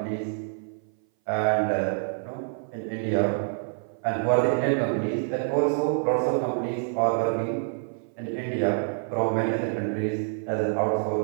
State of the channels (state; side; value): silent; left; 58 dB below the other